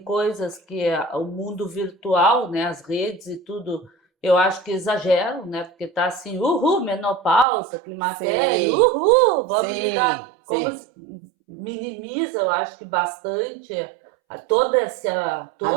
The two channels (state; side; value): drops out; left; at 7.5 s